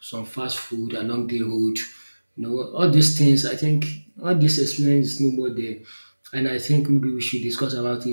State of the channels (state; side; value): inverted; both; correlation -1.00